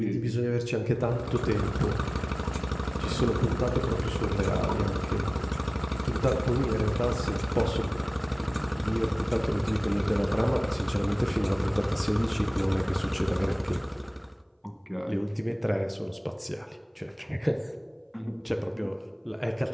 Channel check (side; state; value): both; identical; correlation 1.00